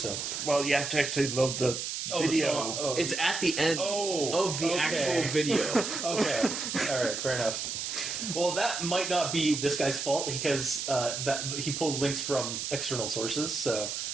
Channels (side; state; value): right; noise; hiss, 4 dB below the sound